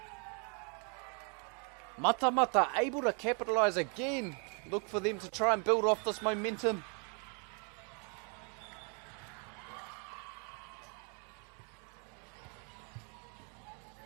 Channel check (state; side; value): quieter; left; 37.8 dB